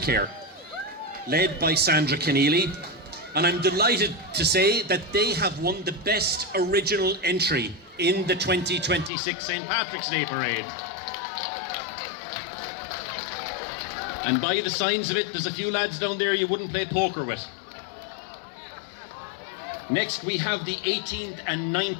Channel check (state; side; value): drops out; right; at 9.1 s